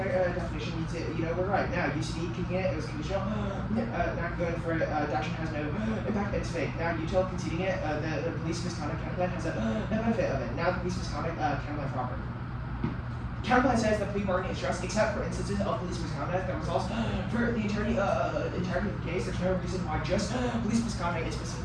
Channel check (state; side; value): identical; both; correlation 1.00